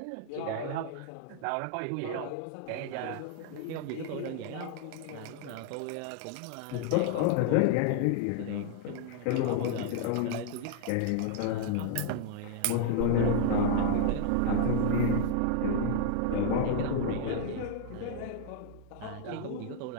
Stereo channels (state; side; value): different; both; correlation 0.00